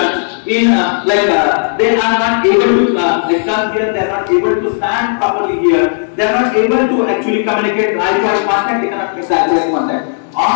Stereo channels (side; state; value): right; silent; digital silence